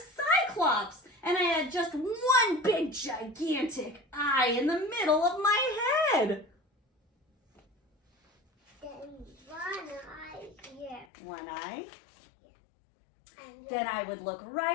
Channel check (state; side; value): drops out; right; at 11.1 s